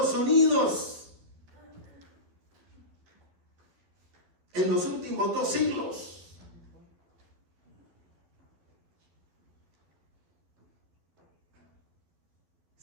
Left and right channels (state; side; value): late; left; 11 ms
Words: Unidos en los últimos 2 siglos?